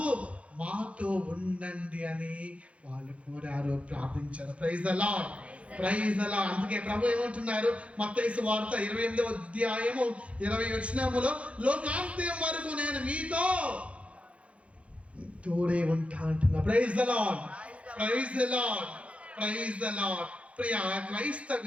మాతో ఉండండి అని వాళ్ళు కోరారు, ప్రార్థించారు. Praise the lord, praise the lord. అందుకే ప్రభు ఏమంటున్నారు? మత్తయి సువార్త 28వ అధ్యాయము 20వ వచనములో లోకాంత్యం వరకు నేను మీతో తోడే ఉంటా అంటున్నా. Praise the lord, praise the lord, praise the Lord. ప్రియ క్రైస్తవ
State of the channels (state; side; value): late; left; 0.062 ms